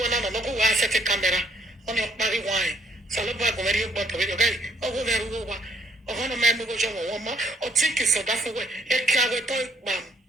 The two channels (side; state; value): both; normal; correlation 0.67